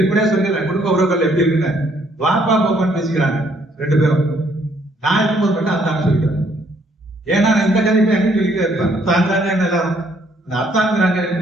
சொல்லிடுறேன், குடும்ப உறவுகள் எப்படி இருக்குன்னு வாப்பா பாப்பான்னு பேசிக்கிறாங்க 2 பேரும். நான் இருக்கும்போது மட்டும் அத்தான்னு சொல்லிக்கிறேன். ஏன்னா நான் இந்த கதைப்பை எங்க சொல்லிட்டே இருப்பேன், அத்தாங்க எல்லாரும் அத்தாங்கிறாங்க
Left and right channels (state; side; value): normal; both; correlation 0.67